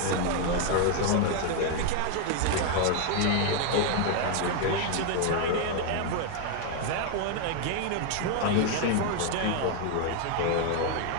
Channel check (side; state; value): both; different; correlation 0.00